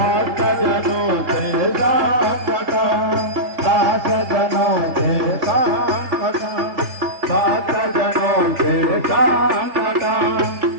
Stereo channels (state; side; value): late; left; 3.3 ms